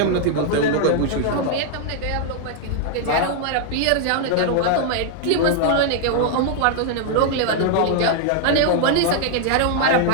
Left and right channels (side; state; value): both; different; correlation 0.00